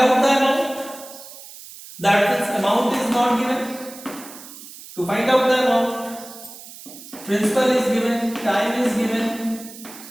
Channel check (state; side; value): noise; right; hiss, 16 dB below the sound